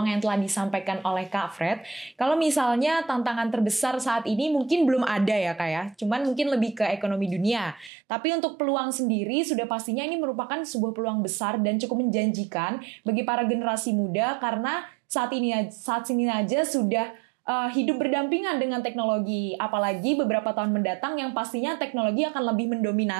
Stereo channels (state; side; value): drops out; left; at 7.9 s